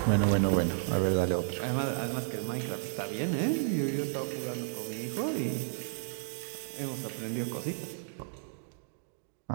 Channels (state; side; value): silent; left; digital silence